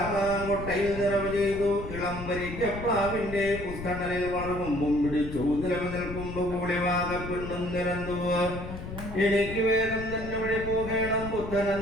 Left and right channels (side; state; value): left; noise; rumble, 9 dB below the sound